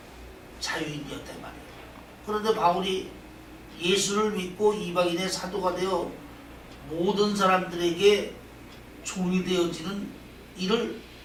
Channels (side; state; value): both; identical; correlation 1.00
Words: 자유인이었단 말이에요. 그런데 바울이 예수를 믿고 이방인의 사도가 되어 모든 사람들에게 종이 되어지는 일을